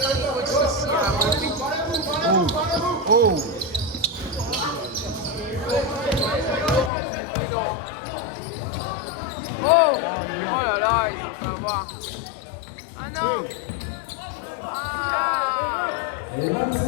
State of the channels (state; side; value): drops out; right; at 6.9 s